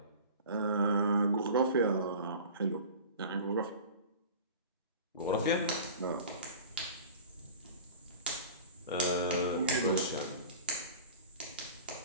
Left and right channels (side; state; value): both; inverted; correlation -0.39